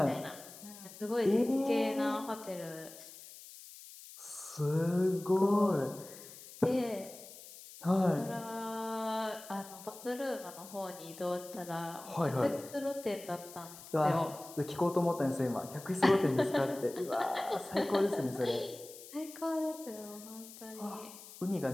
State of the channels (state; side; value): noise; left; hiss, 16 dB below the sound